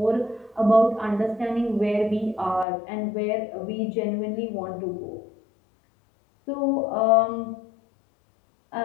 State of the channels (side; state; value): right; drops out; at 2.7 s